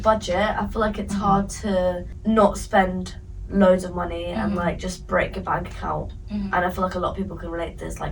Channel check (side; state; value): both; identical; correlation 1.00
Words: I feel like it's hard to not spend loads of money and like just break your bank account. And I feel like a lot of people can relate to this, like